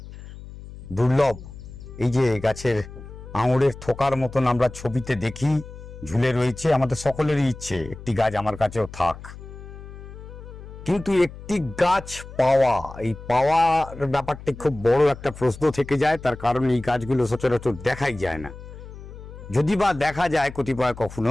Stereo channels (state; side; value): noise; left; hum, 15 dB below the sound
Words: দুর্লভ। এই যে গাছের আঙুরের থোকার মতন আমরা ছবিতে দেখি ঝুলে রয়েছে, আমাদের সকলেরই ইচ্ছে একটি গাছ আমার কাছেও থাক, কিন্তু একটি গাছ পাওয়া, এই পাওয়ার ব্যাপারটা খুব বড় একটা প্রশ্ন থেকে যায়। তার কারণ এই গাছগুলো সচরাচর দেখাই যায় না, যদি বা দেখা যায় কতিপয়